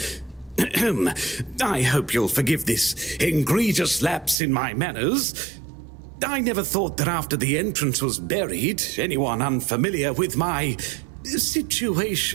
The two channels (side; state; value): left; drops out; at 4.4 s